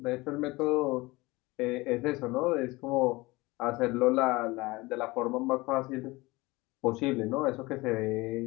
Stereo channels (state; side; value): quieter; right; 22.0 dB